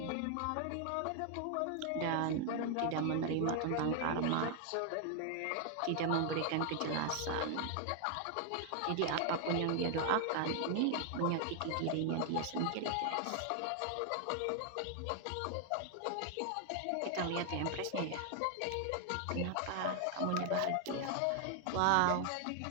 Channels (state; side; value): different; both; correlation 0.00